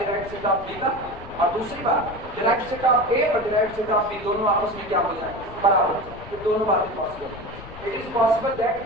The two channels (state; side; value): noise; left; rumble, 16 dB below the sound